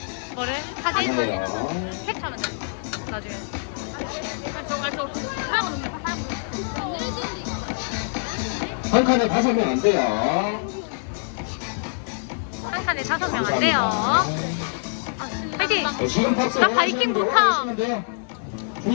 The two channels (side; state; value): right; silent; digital silence